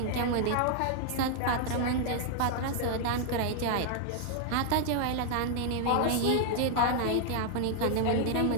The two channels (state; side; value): different; both; correlation 0.00